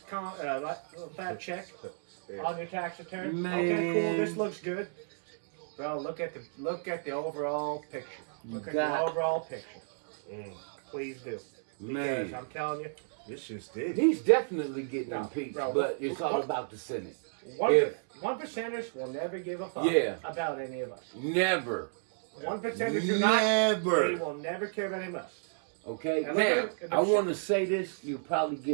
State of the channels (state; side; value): silent; left; digital silence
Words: check Yeah. on your tax return. Man. Okay, cool. This looks good. Bro, look at the overall picture. Look at got- the overall picture. Mm. Please do. Man. Because I'm telling you, This shit's deep. He's definitely getting No, impeached, bro, but it's all what- about the Senate. one If- one percenters will never give a fuck Yeah. about any of us. Never. 1%ers do not. Never. They will never care about any of us. Okay, And now, look at the I want to say this. You'll probably